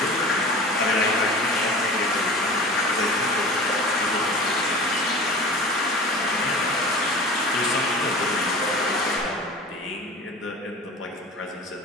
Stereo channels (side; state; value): both; normal; correlation 0.38